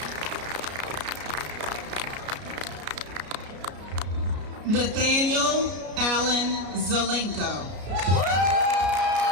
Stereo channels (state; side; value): late; left; 33 ms